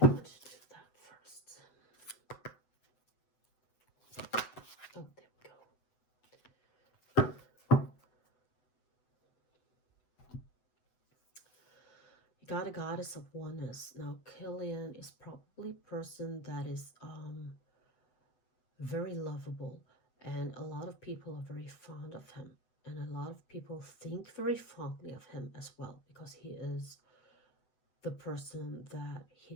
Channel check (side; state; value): right; late; 8.0 ms